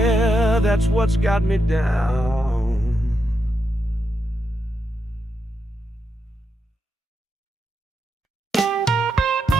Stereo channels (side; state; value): both; normal; correlation 0.85